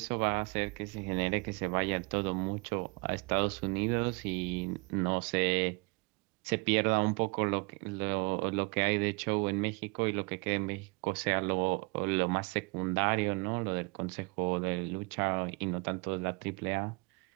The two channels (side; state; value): left; quieter; 28.9 dB